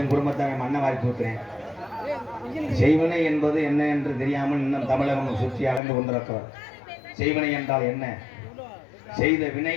குடும்பத்தை அவன் மண்ணை வாரி தூக்குறேன். செய்வினை என்பது என்ன என்று தெரியாமல் இன்னும் தமிழகம் சுற்றி அலைந்து கொண்டிருக்கிறார். செய்வினை என்றால் என்ன? செய்த வினை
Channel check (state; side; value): drops out; right; at 5.8 s